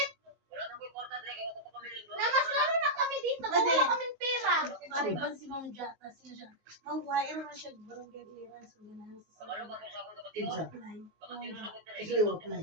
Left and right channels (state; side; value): late; left; 19 ms